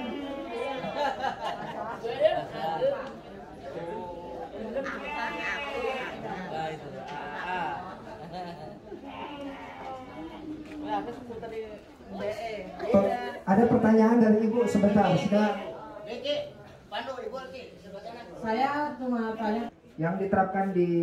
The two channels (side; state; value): both; identical; correlation 1.00